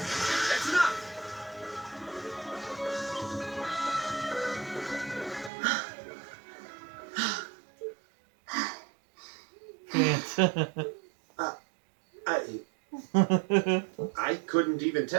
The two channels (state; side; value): drops out; left; at 5.5 s